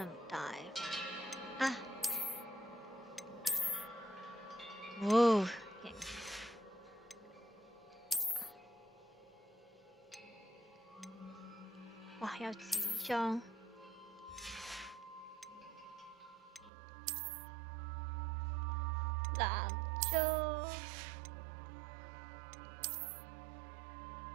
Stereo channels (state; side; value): drops out; left; at 16.7 s